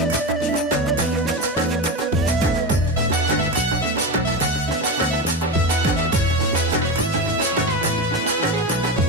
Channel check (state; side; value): normal; both; correlation 0.21